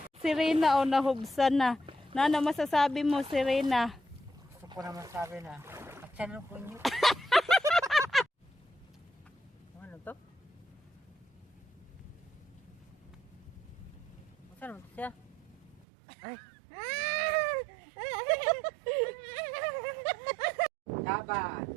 si Rina o nahubsan na. Ano masasabi mo si Rina? Gusto ko naman sabi na, aksan ko niyo. Ano to? Saan mo siya? Ay! Dapat!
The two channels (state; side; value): drops out; left; at 15.9 s